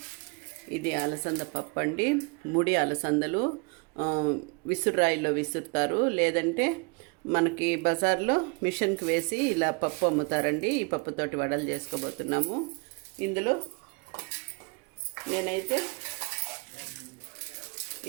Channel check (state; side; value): quieter; left; 31.8 dB